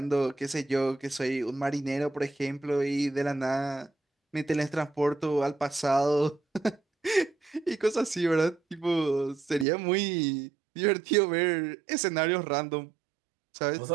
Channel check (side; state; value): left; drops out; at 9.7 s